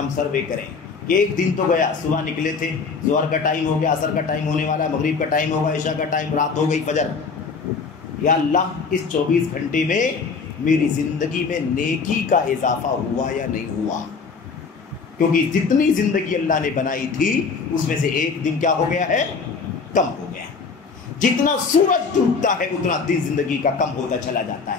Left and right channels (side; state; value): right; quieter; 5.0 dB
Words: سروے کریں. ایک دن تو گیا, صبح نکلے تھے, ظہر کا ٹائم ہو گیا, عصر کا ٹائم ہونے والا, مغرب کا ٹائم ہوگا, عشاء کا ٹائم, رات ہو گئی, فجر. یا اللہ اس 24 گھنٹے میں میری زندگی میں نیکی کا اضافہ ہوا یا نہیں ہوا؟ کیونکہ جتنی زندگی اللہ نے بنائی تھی اس میں سے ایک دن کیا ہو گیا ہے؟ کم ہو گیا. جتنا سورج ڈوبتا ہے اتنا دن زندگی کا کم ہوتا چلا جاتا